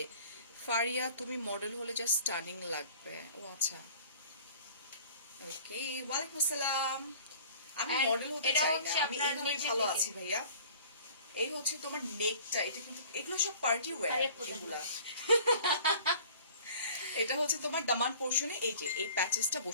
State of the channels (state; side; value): inverted; both; correlation -0.48